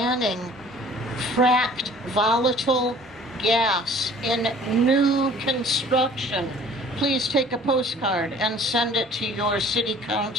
fracked volatile gas in new construction. Please take a postcard and send it to your city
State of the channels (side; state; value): both; normal; correlation 0.50